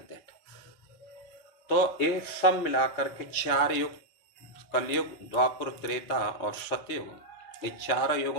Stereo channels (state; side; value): late; right; 4.3 ms